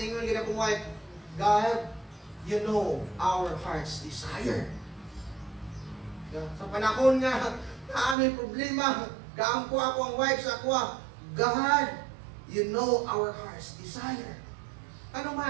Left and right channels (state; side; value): drops out; left; at 8.2 s